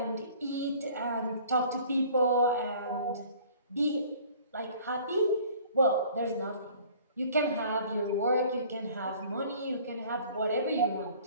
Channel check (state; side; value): inverted; both; correlation -0.51